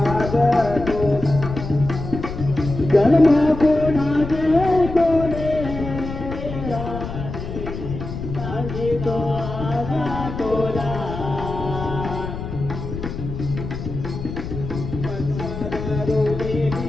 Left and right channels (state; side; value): noise; left; rumble, 7 dB below the sound